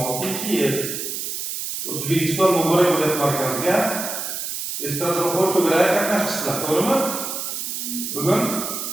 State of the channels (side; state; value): right; noise; hiss, 5 dB below the sound